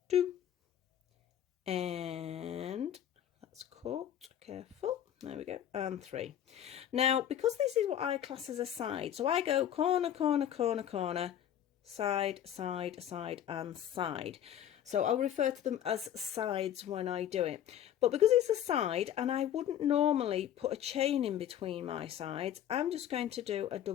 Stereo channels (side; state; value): right; quieter; 10.5 dB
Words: 2, and that's caught. Careful. There we go, and 3. Now, because this is what I class as a side, so I go corner, corner, corner, corner, side, side, side, and side. So I'll refer to them as sides when I do it. But because it's a side, and I wouldn't normally put a chain in between my sides, I'm just going to do a